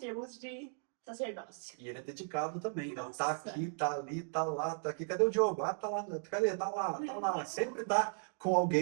de sacerdócio. E ele é dedicado também, né? Tá Nossa! aqui, tá ali, tá lá, tá aqui. Cadê o Diogo? Ah, tá lá. Cadê? Tá lá, tá lá. Sempre tá com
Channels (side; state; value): left; silent; 54 dB below the other